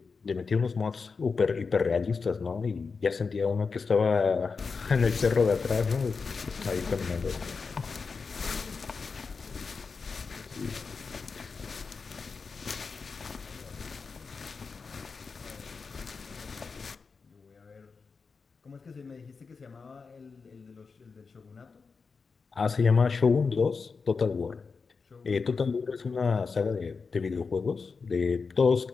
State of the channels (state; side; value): quieter; right; 4.9 dB